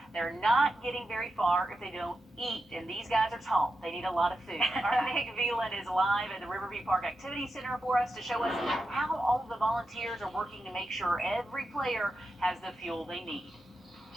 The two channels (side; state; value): both; normal; correlation 0.89